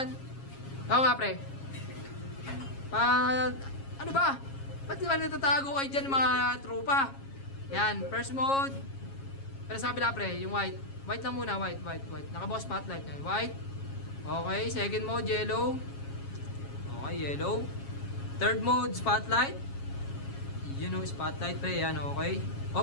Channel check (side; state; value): right; late; 7.3 ms